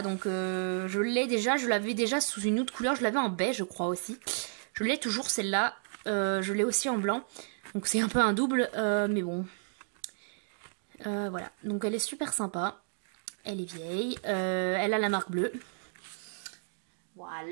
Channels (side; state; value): left; silent; digital silence